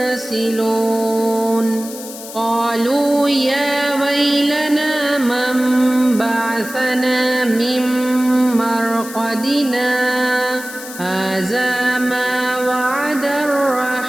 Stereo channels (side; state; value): left; noise; hiss, 13 dB below the sound